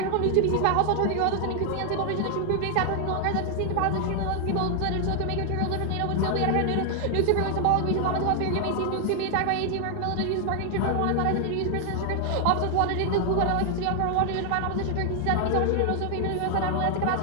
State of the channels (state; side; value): different; both; correlation 0.00